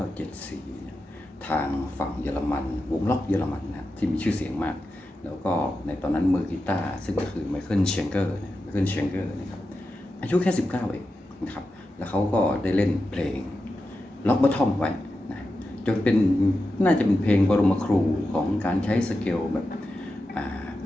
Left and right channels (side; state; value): both; normal; correlation 0.90